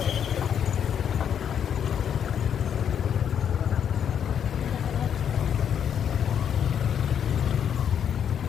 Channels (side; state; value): right; quieter; 8.5 dB